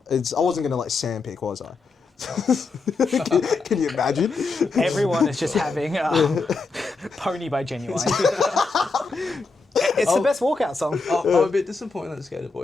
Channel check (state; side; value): quieter; right; 4.1 dB